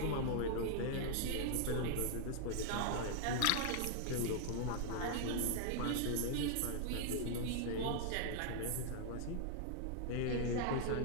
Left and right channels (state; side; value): different; both; correlation -0.01